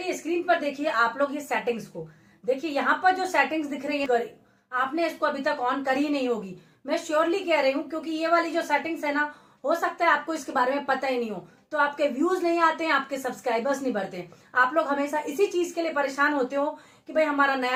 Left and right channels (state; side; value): identical; both; correlation 1.00